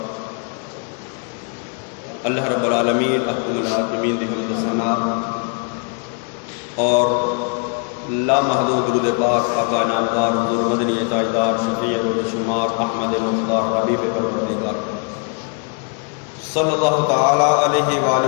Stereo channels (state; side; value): quieter; right; 38.1 dB